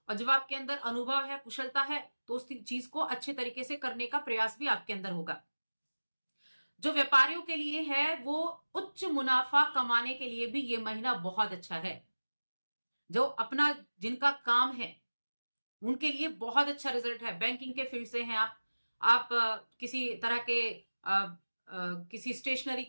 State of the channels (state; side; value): inverted; both; correlation -1.00